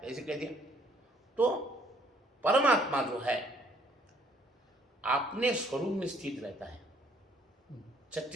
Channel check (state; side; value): normal; both; correlation 0.64